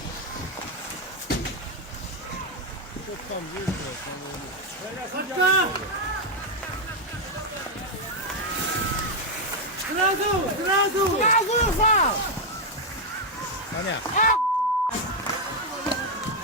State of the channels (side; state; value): both; normal; correlation 0.01